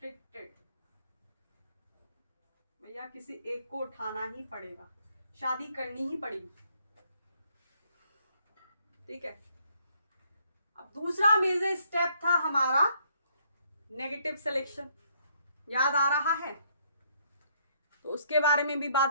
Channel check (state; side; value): inverted; both; correlation -0.68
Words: भैया किसी एक को उठाना ही पड़ेगा, शादी करनी ही पड़ेगी। ठीक है, अब दूसरा मेजर स्टेप था हमारा नेगेटिव सिलेक्शन, याद आ रहा है? तो उसके बारे में भी